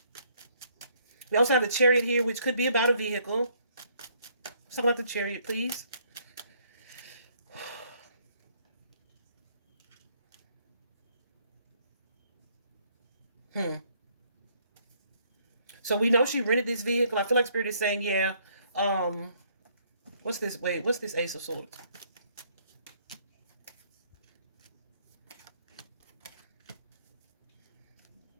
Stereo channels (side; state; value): both; inverted; correlation -0.66